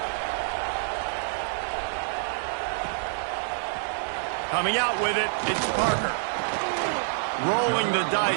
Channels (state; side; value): silent; left; digital silence